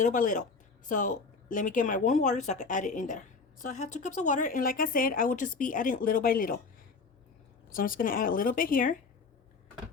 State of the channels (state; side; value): quieter; right; 4.5 dB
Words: by little. So let me get my warm water so I can add it in there. So I have 2 cups of water, and like I said, I will just be adding little by little. So I'm just going to add a little bit here,